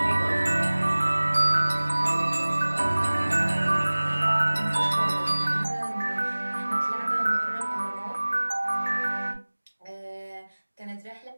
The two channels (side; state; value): both; inverted; correlation -1.00